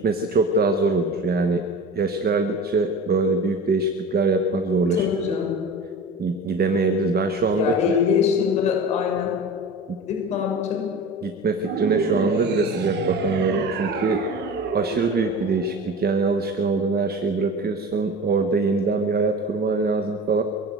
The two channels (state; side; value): normal; both; correlation 0.34